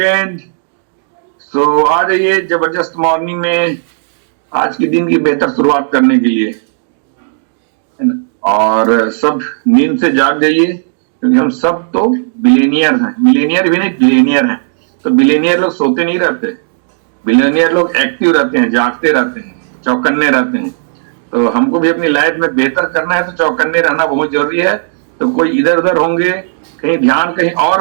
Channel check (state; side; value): silent; left; digital silence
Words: So आ जाइए जबरदस्त मॉर्निंग में आज के दिन की बेहतर शुरुआत करने के लिए, है ना। और सब नींद से जाग जाइए क्योंकि हम सब तो बिलेनियर हैं, मिलेनियर भी नहीं बिलेनियर हैं। तो बिलेनियर लोग सोते नहीं रहते, बिलेनियर लोग एक्टिव रहते हैं, जागते रहते हैं, चौकन्ने रहते हैं। तो हमको भी अपनी लाइफ में बेहतर करना है तो चौकन्ने रहना बहुत जरूरी है। तो कोई इधर उधर होंगे, कहीं ध्यान कहीं और